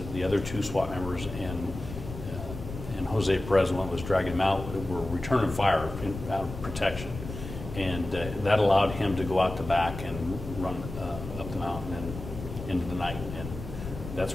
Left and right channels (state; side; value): noise; left; rumble, 10 dB below the sound